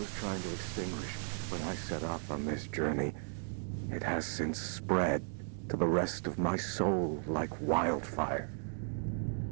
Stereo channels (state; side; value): silent; left; digital silence